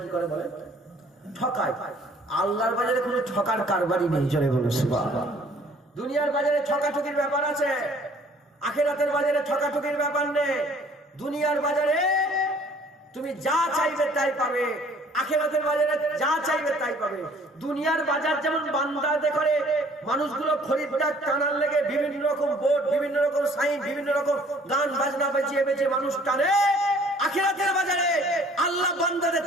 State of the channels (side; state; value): both; normal; correlation 0.56